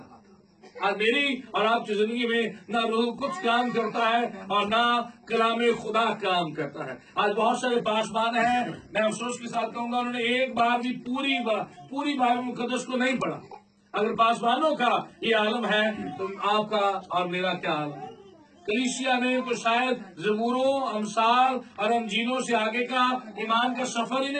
आज मेरी और आपकी जिंदगी में ना रूह कुद्स काम करता है और ना कलाम खुदा काम करता है। आज बहुत सारे पासबान हैं, मैं अफसोस के साथ कहूंगा, उन्होंने एक बार भी पूरी बाइबल मुकद्दस को नहीं पढ़ा। अगर पासबानों का ये आलम है तो आपका और मेरा क्या आलम? कलीसिया ने तो शायद ज़बूरों, अमसाल और अंजीलों से आगे का ईमान का सफर ही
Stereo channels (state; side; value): identical; both; correlation 1.00